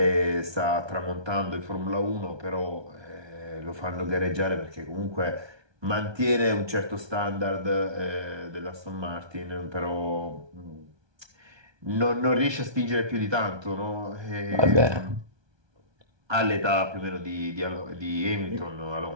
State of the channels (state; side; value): late; left; 1.2 ms